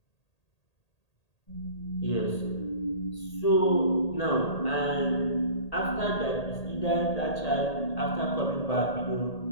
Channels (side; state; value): right; late; 1.8 ms